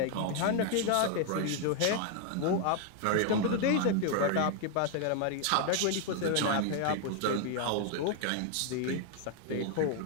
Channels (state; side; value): different; both; correlation 0.00